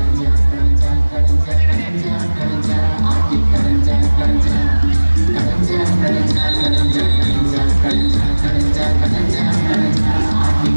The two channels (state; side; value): inverted; both; correlation -1.00